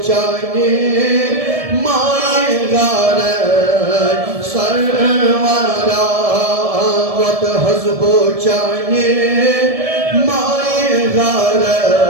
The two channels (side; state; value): left; late; 1.7 ms